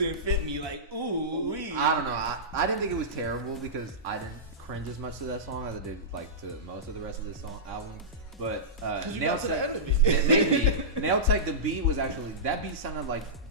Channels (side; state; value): both; normal; correlation -0.17